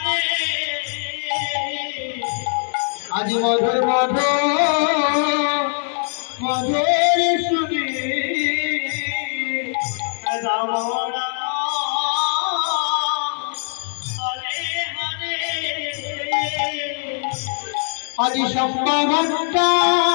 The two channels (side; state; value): right; silent; 61 dB below the other